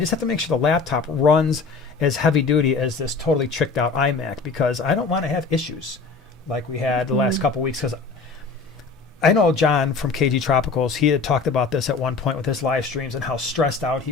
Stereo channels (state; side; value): quieter; right; 4.5 dB